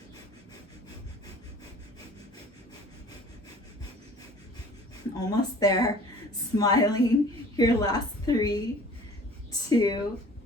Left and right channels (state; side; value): normal; both; correlation 0.48